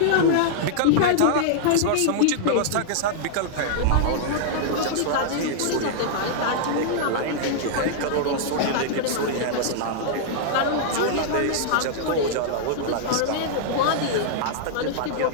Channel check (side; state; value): both; different; correlation -0.01